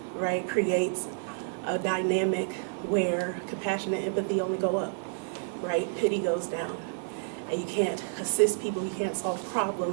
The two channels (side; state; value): left; silent; digital silence